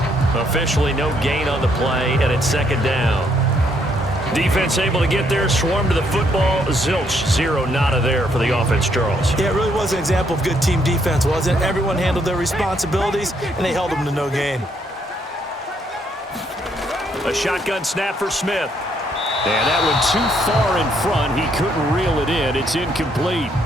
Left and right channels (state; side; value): normal; both; correlation 0.71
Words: Officially no gain on the play, and it's second down. Defense able to get there, swarm to the football. Zilch, zero, nada there for the offense, Charles. Yeah, it really was an example of good team defense, wasn't it? Everyone handled their responsibilities, and they held them to no gain. A shotgun snap for Smith. And that one too far in front. He couldn't reel it in. It's incomplete.